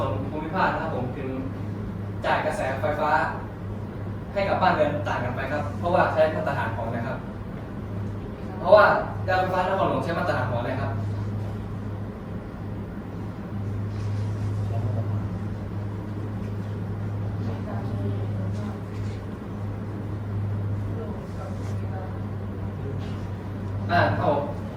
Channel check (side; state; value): both; identical; correlation 1.00